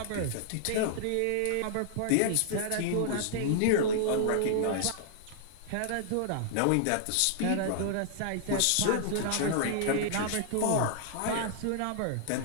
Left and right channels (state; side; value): different; both; correlation -0.01